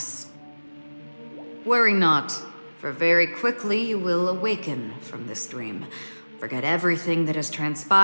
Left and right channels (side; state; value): both; inverted; correlation -1.00